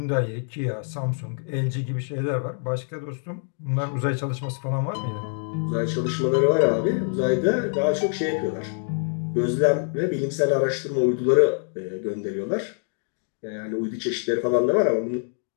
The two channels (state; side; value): silent; right; 62 dB below the other